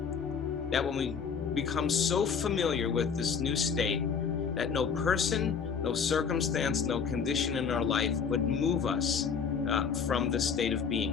that when we become so familiar with this new state, that no person, no circumstance, no condition in our life would move us from the state of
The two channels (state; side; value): quieter; right; 6.3 dB